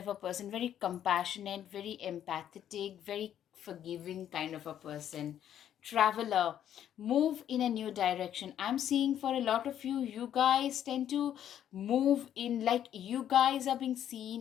a person, very compassionate, very empathetic, very forgiving kind of a person. Traveler, move in a new direction. I'm seeing for a lot of you, you guys tend to move in, like, you guys are being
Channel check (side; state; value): right; quieter; 10.4 dB